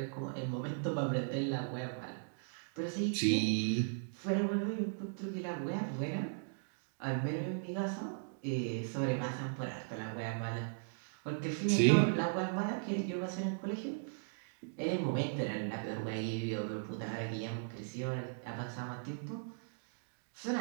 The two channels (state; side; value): silent; left; digital silence